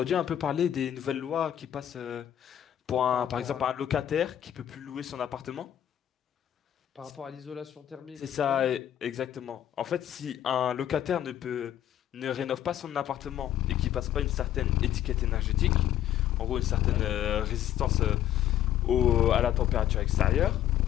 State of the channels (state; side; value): quieter; right; 11.5 dB